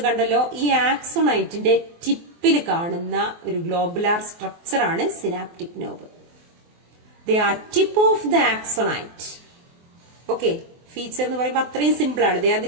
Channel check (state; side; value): late; left; 24 ms